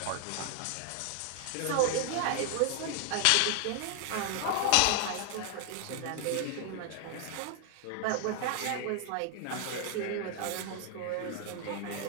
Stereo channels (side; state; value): both; different; correlation 0.00